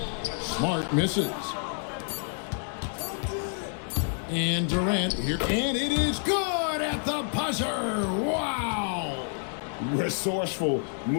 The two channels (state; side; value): silent; right; 59 dB below the other